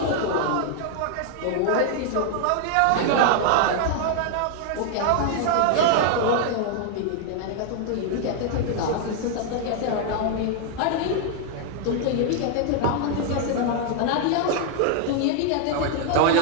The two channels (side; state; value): both; different; correlation 0.00